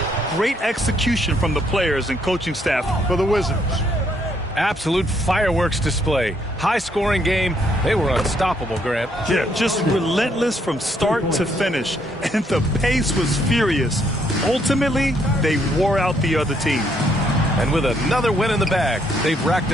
Great execution from the players and coaching staff. For the Wizards. Absolute fireworks display. High-scoring game. They were unstoppable, Grant. Yeah, just relentless from start to finish. And the pace was furious. Ultimately, they wore out the other team. And with another win in the bag, they've racked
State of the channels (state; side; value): normal; both; correlation 0.71